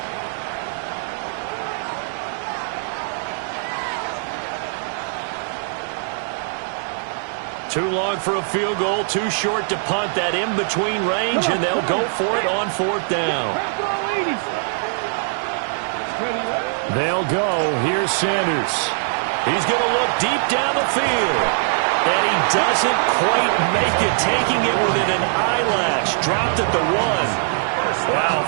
Too long for a field goal, too short to punt. That in-between range, and they'll go for it on 4th down. They'll go. Here's Sanders. He's going to look deep down the field. And he doesn't quite make it, taking it within an eyelash. Dropped at the 1. Wow,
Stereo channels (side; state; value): left; silent; digital silence